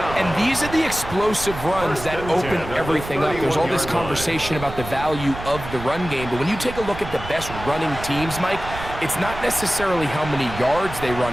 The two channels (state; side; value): noise; right; rumble, 11 dB below the sound